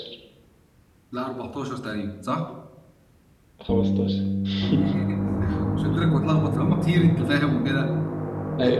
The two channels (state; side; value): identical; both; correlation 1.00